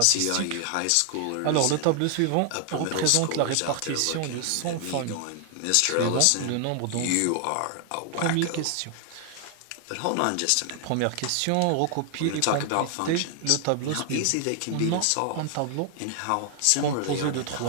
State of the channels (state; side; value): different; both; correlation 0.00